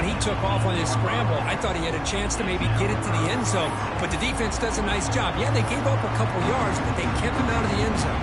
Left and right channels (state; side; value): identical; both; correlation 1.00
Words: he took off on his scramble, I thought he had a chance to maybe get it to the end zone. But the defense does a nice job. Yeah, they gave up a couple yards, but they kept him out of the end